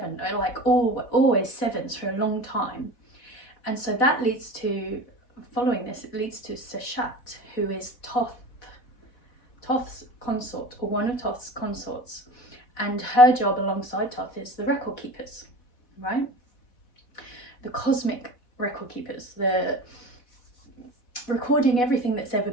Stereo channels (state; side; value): late; right; 4.1 ms